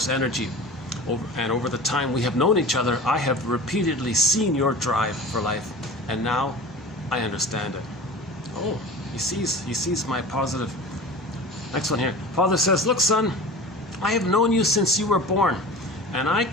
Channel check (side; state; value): both; normal; correlation 0.36